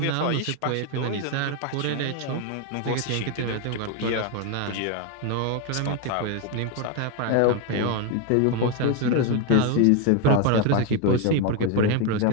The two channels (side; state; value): both; different; correlation 0.01